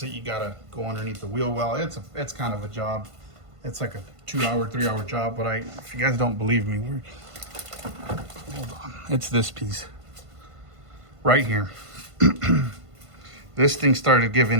it, you gotta go underneath the wheel well. It's kind of a job. It's like a 2-hour, 3-hour job, but if you guys don't believe me, hold on. It's this piece right here. This thing started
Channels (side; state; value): left; late; 1.5 ms